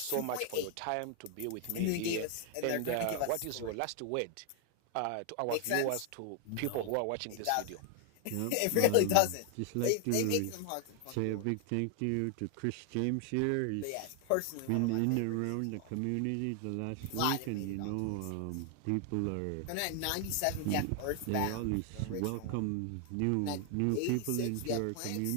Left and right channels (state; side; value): different; both; correlation 0.00